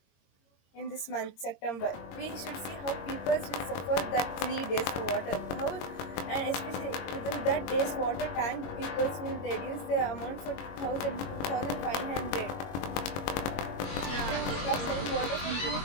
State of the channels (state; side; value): late; right; 22 ms